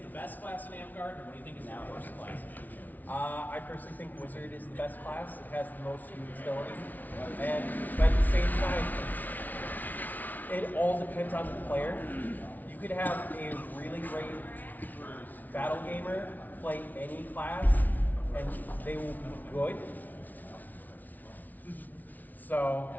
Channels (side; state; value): right; late; 0.079 ms